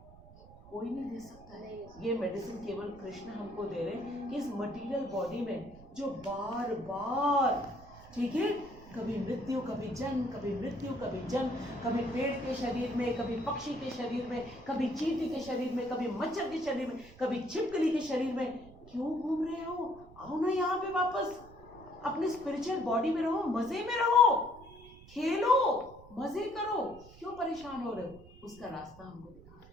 कोई नहीं दे सकता है। ये मेडिसिन केवल कृष्ण हमको दे रहे हैं कि इस मटेरियल बॉडी में जो बार बार, ठीक है, कभी मृत्यु कभी जन्म, कभी मृत्यु कभी जन्म, कभी पेड़ के शरीर में, कभी पक्षी के शरीर में, कभी चींटी के शरीर में, कभी मच्छर के शरीर में, कभी छिपकली के शरीर में, क्यों घूम रहे हो? आओ ना यहाँ पे वापस, अपने स्पिरिचुअल बॉडी में रहो, मजे में रहो, खेलो, मजे करो, क्यों परेशान हो रहे हो? उसका रास्ता हमको दिखा रहे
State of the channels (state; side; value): noise; right; rumble, 20 dB below the sound